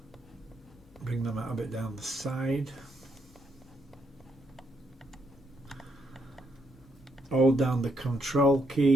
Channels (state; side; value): normal; both; correlation 0.76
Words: Bring them out a bit down the side. Hold down the control